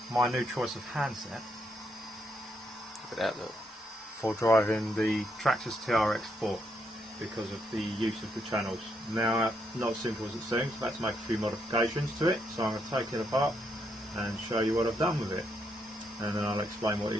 my new choice of handset. Look at that look. For driving the Traxxas trx-4 because of the use of the channels. Now, not as simple as it seems, I've had to make a few modifications to it, so I'm going to take it apart and show you what I've done with it. And then I'll explain what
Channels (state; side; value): normal; both; correlation 0.77